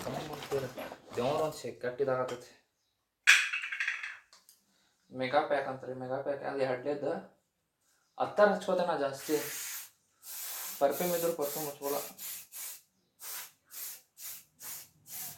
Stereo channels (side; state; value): both; identical; correlation 1.00